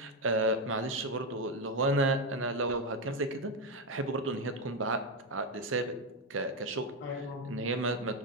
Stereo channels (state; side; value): normal; both; correlation 0.08